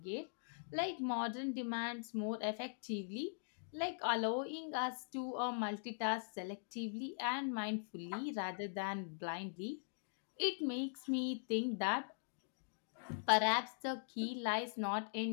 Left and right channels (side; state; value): right; silent; digital silence